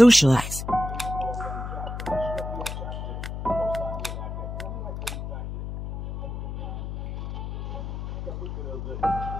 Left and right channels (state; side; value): noise; left; hum, 6 dB below the sound